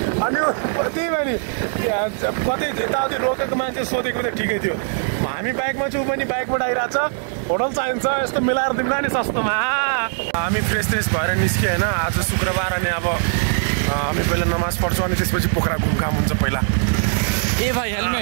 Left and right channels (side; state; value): left; silent; 65 dB below the other